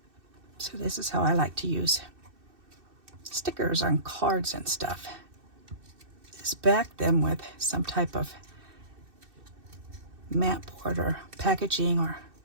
So this is how I like to use stickers on cards and stuff. Just back them with some type of mat board or packaging or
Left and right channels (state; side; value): late; left; 2.6 ms